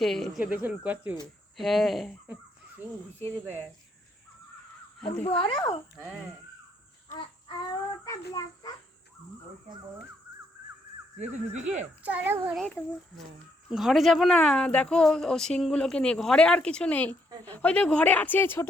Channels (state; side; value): normal; both; correlation 0.72